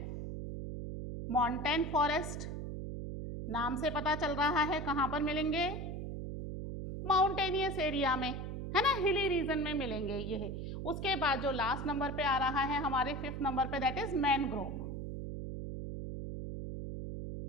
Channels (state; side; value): noise; right; hum, 5 dB below the sound